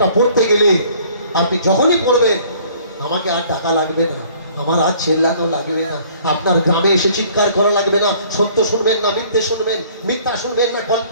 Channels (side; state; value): both; inverted; correlation -0.56